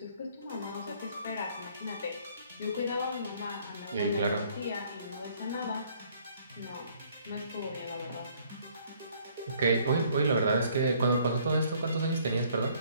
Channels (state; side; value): inverted; both; correlation -0.61